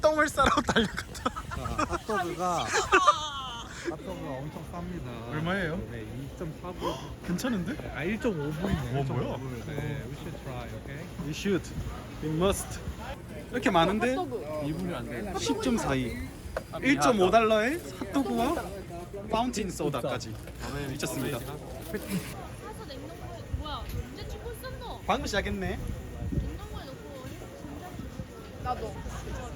똥을 싸러 달려갔다. 핫도그가 엄청 쌉니다. 얼마예요? 네, 2.4불. 괜찮은데? 아, 1.5불이네. 뭐야? 네, we should try, okay? We should. We must. 이렇게 많은데 2불이 안 돼. 10.42. 1.5달러에 핫도그와 파운틴 소다까지 미쳤습니다. 사서 냉동고에 뭐야? 언제 찍고 있었노? 방금 시작했네. 냉동고에 넣고 진짜 나도.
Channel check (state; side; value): identical; both; correlation 1.00